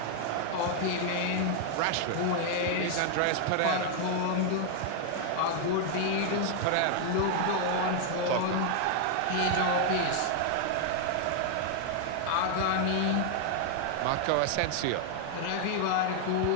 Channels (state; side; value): different; both; correlation 0.00